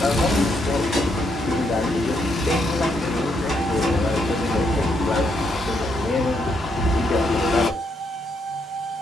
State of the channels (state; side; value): normal; both; correlation 0.76